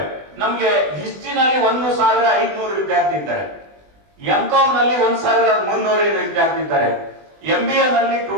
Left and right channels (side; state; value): left; late; 20 ms